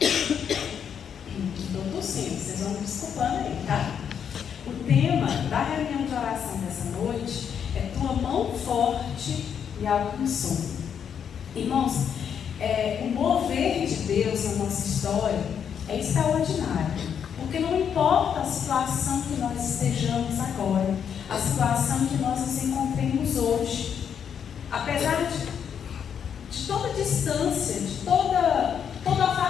tossindo, vocês vão me desculpando aí, tá? O tema da reunião de oração dessa noite é Tua mão forte me alcançou. Irmãos, o mover de Deus na nossa história é extraordinário, porque não importa a situação que nós estejamos agora, a situação que nós nos encontremos hoje, apesar de toda distância, de todo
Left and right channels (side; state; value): right; quieter; 7.9 dB